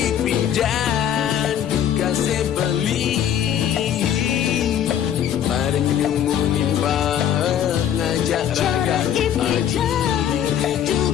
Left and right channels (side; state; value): right; quieter; 9.9 dB